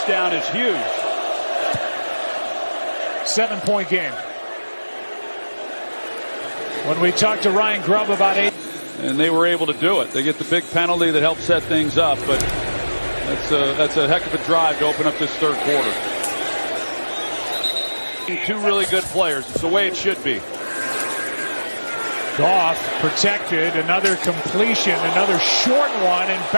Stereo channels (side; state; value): both; inverted; correlation -1.00